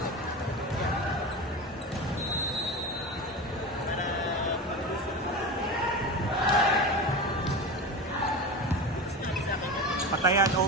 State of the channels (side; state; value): both; normal; correlation 0.25